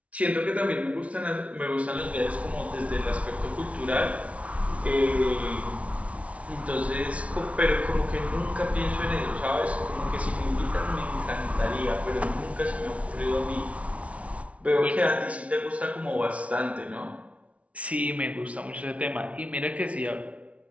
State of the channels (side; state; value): left; late; 0.064 ms